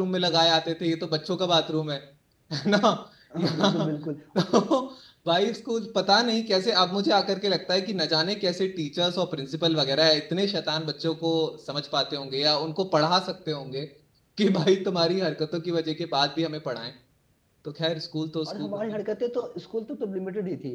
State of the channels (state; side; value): identical; both; correlation 1.00